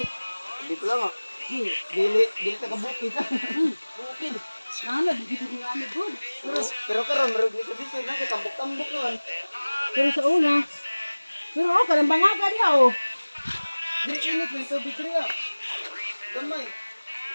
hindi ko lang, oh. Dili ka kabukid. Bukid. Ano, dito ko nga good. Pero karon marug ni kabisa na kay tambok-tambok noon. Pero sa una. Pero ako, karang bangaga niya, oh. Dili init ng tubig riya. Gamay.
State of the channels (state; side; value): inverted; both; correlation -1.00